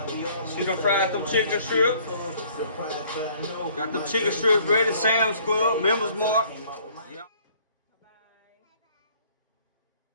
See them fried them chicken strips. Got them chicken strips ready. Sam's Club, Members Mark.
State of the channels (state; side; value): inverted; both; correlation -0.58